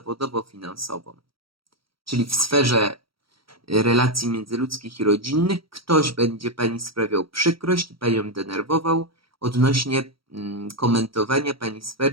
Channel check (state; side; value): late; left; 0.75 ms